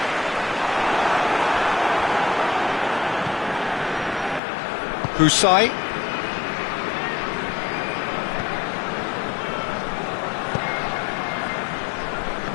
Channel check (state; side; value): drops out; right; at 4.4 s